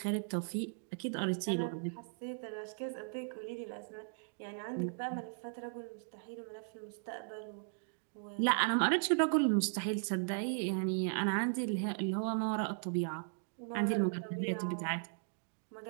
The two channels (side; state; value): left; silent; digital silence